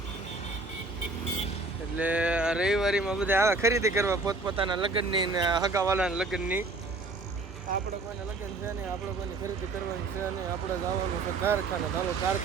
એટલે આ રવિવારીમાં બધા આવે ખરીદી કરવા પોતપોતાના લગ્નની ને હગાવાલાના લગ્નની. આપણે કોઈને લગ્ન છે નહીં, આપણે કોઈને ખરીદી કરવાની છે નહીં, આપણે જવાનું છે કારખાને. ચાલો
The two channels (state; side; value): quieter; left; 3.4 dB